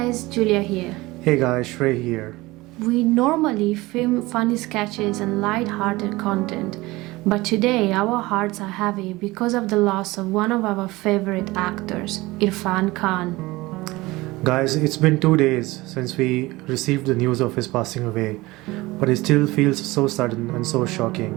Julia here. Hey guys, Shrey here. We normally film funny sketches and light-hearted content, but today our hearts are heavy because of the loss of one of our favorite actors, Irrfan Khan. Guys, it's been 2 days since we received the news of his passing away, but it still feels so sudden and so shocking.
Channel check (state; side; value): quieter; left; 20.6 dB